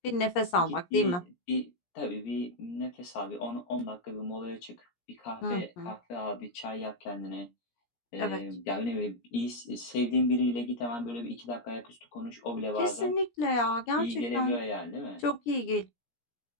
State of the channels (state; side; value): late; right; 17 ms